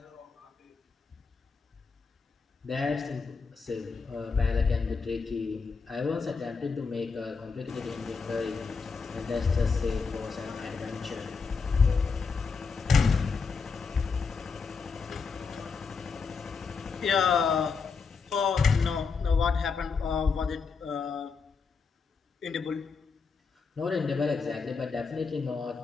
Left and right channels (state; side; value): quieter; right; 5.1 dB